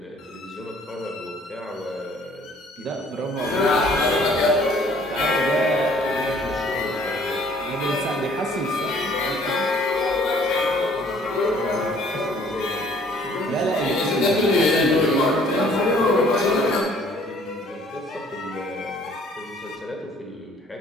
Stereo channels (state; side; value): normal; both; correlation 0.57